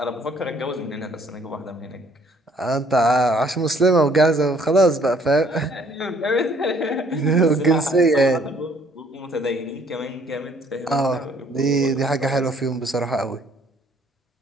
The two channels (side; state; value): both; normal; correlation 0.62